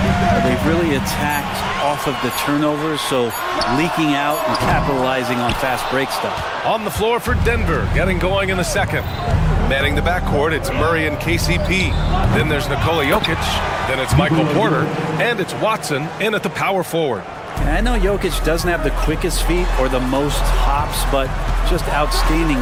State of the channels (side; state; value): both; identical; correlation 1.00